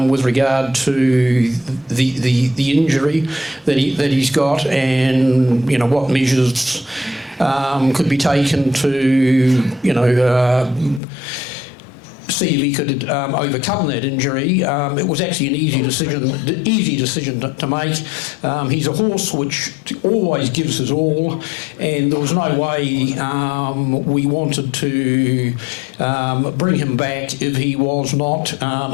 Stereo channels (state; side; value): drops out; right; at 11.0 s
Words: with regard to the injury that he's got, and what measures could be taken to see if he could overcome that injury. It was actually an easy decision to make. He's a horse which always gives his all, and there was no way we wanted to bring him back if he was not